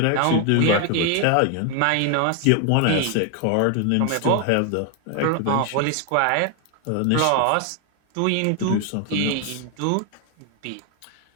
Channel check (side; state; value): both; different; correlation 0.01